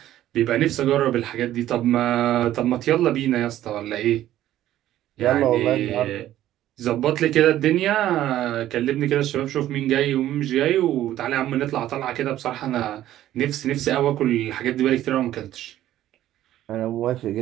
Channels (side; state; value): left; quieter; 13.2 dB